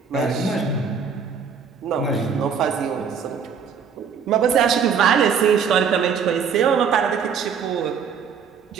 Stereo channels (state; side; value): quieter; left; 6.6 dB